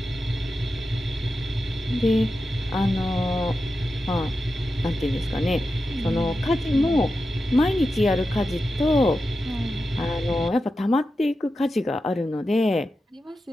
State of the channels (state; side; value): normal; both; correlation 0.91